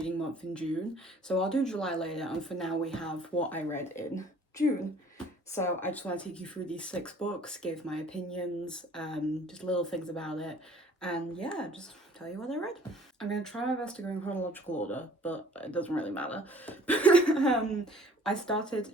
month in June. So I'll do July later, and for now we have what I read in June. So I just want to take you through these 6 books, give my opinions, just little things about it, and yeah, just tell you what I read. I'm going to try my best to go in chronological order, but it doesn't really matter. I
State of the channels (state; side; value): normal; both; correlation 0.54